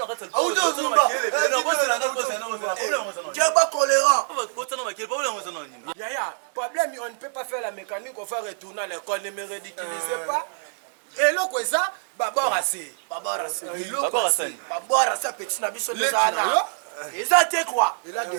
katsa. Au do zumba. No bo se na ndo bo se na problème ça non. Tu es pas tolérant. Bo se na makile problème ça non. Yaya, problème on ne peut pas faire la mécanique, on va retourner à l'école, ne me ridiculisez pas. Et là quoi ça? Babora c'est. Babora c'est. Babora c'est petit na biso les ana. Et ça t'es quoi? Il a des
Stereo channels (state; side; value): silent; left; digital silence